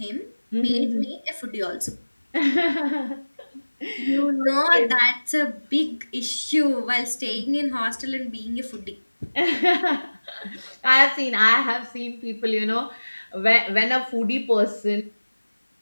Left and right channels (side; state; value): both; inverted; correlation -1.00